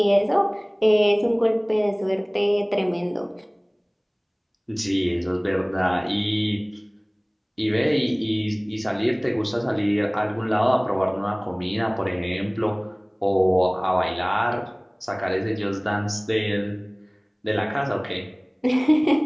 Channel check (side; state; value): both; identical; correlation 1.00